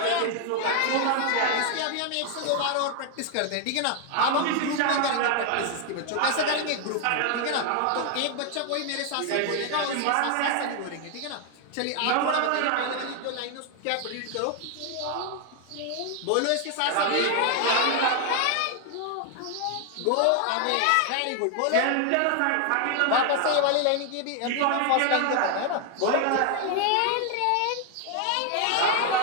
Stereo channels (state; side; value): different; both; correlation 0.00